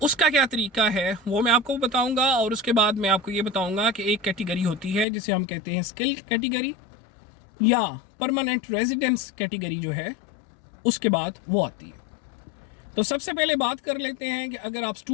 उसका क्या तरीका है वो मैं आपको बताऊंगा। और उसके बाद मैं आपको ये बताऊंगा कि एक कैटेगरी होती है जिसे हम कहते हैं स्किल कैटेगरी या परमानेंट रेजिडेंस कैटेगरी जो है, उसके बाद वो आती है। तो सबसे पहले बात कर लेते हैं कि अगर आप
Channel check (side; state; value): right; drops out; at 5.1 s